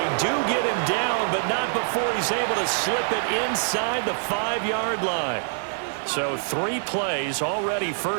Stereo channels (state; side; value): silent; left; digital silence